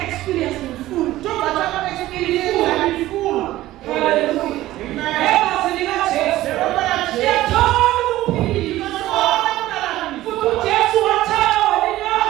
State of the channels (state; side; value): quieter; left; 15.7 dB